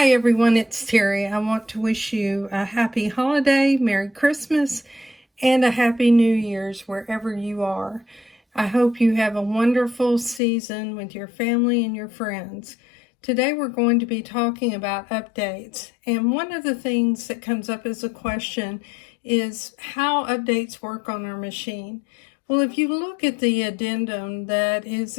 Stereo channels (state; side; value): drops out; right; at 10.4 s